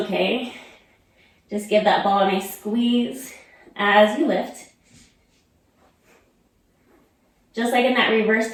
Just give that ball a nice squeeze as you lift. Just like in that reverse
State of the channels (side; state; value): both; identical; correlation 1.00